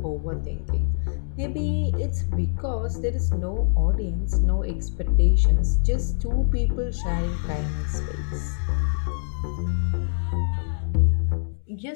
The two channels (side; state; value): right; silent; digital silence